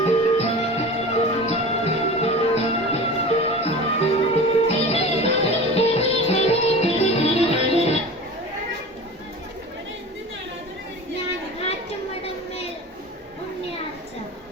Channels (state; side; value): normal; both; correlation 0.34